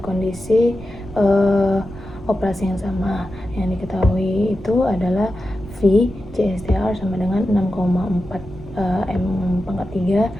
operasi yang sama, yang diketahui itu adalah V CSTR sama dengan 6,4 M pangkat 3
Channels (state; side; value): noise; right; rumble, 17 dB below the sound